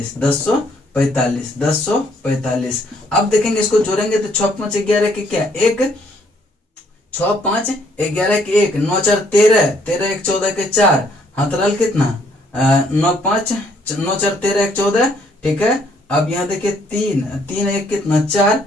1045, 1045। अब देखेंगे इसको जोड़ेंगे तो 6 5 11 के क्या एक, 6 5 11 के एक, 9 4 13, 13 1 14 के 4, हाथ रल कितना 9 5 9 4 13 1 14, ठीक है। अब यहाँ देखिए 3 3 1 कितना 4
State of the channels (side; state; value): both; normal; correlation 0.67